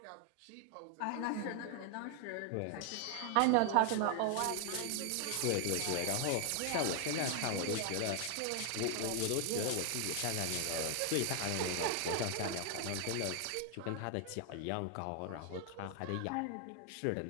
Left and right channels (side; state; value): both; different; correlation 0.00